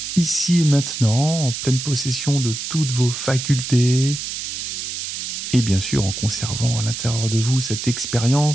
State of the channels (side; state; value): right; noise; hiss, 6 dB below the sound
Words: ici et maintenant, en pleine possession de toutes vos facultés, et bien sûr en conservant à l'intérieur de vous cette